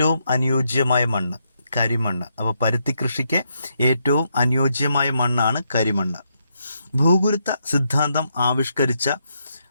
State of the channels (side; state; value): both; inverted; correlation -0.79